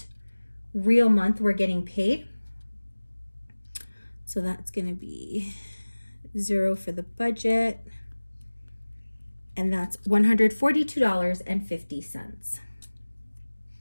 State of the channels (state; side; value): inverted; both; correlation -1.00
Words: real month we're getting paid. So that's going to be 0 for the budget, and that's $142.50.